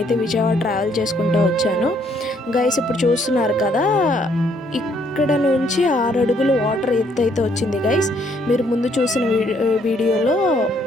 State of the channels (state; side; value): normal; both; correlation 0.68